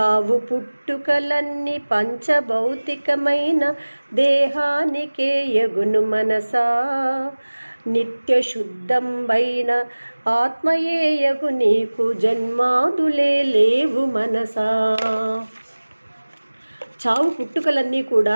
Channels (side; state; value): both; inverted; correlation -1.00